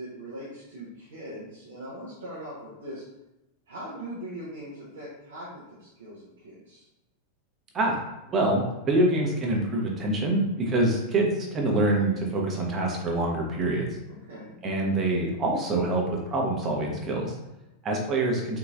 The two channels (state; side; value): normal; both; correlation 0.05